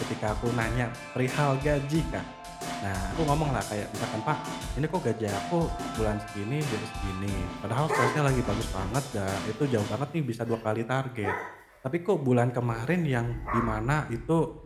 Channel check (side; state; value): both; identical; correlation 1.00